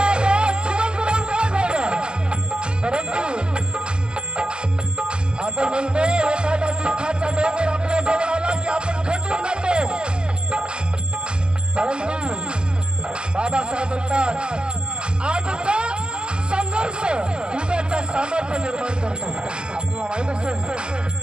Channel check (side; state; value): left; late; 0.051 ms